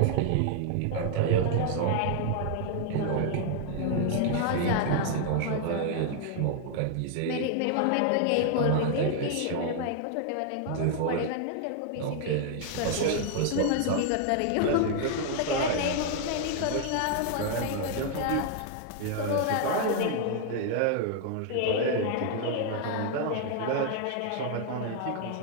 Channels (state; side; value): different; both; correlation 0.00